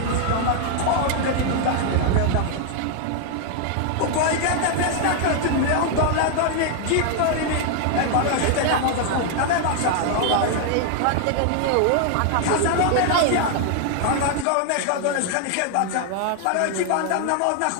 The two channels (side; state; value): both; different; correlation 0.00